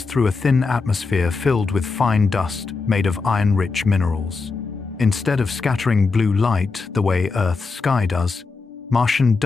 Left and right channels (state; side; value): quieter; right; 4.3 dB